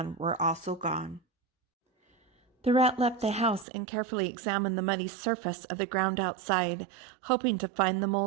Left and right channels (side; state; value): left; drops out; at 3.7 s